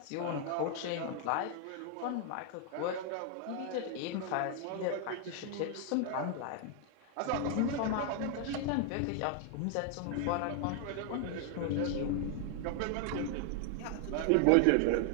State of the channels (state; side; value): different; both; correlation 0.00